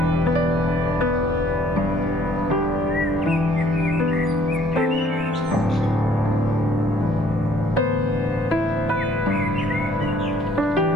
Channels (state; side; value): normal; both; correlation 0.60